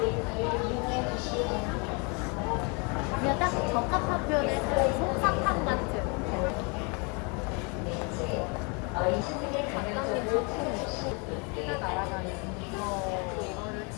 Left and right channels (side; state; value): right; quieter; 32.5 dB